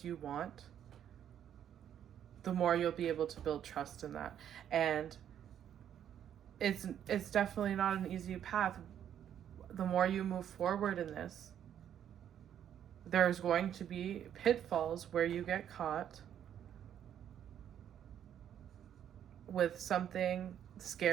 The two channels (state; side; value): quieter; left; 9.8 dB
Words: you want. The more you'll be able to build trust in that. And it's definitely not an easy path. The more you move forward in this, there's going to be pitfalls where you get caught with something